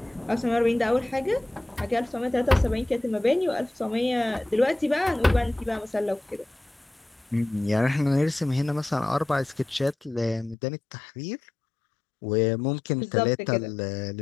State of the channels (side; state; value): right; drops out; at 10.6 s